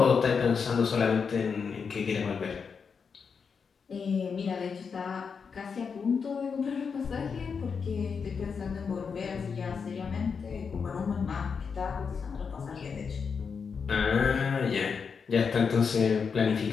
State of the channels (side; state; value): right; quieter; 5.9 dB